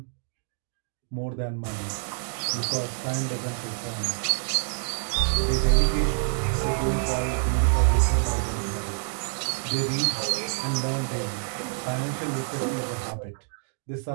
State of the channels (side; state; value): left; silent; digital silence